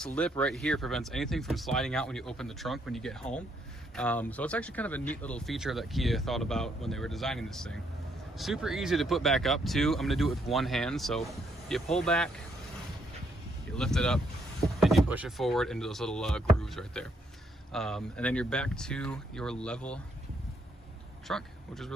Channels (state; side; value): normal; both; correlation 0.73